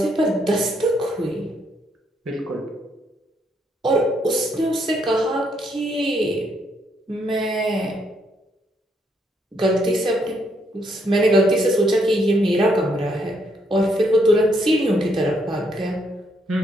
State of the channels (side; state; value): both; normal; correlation 0.74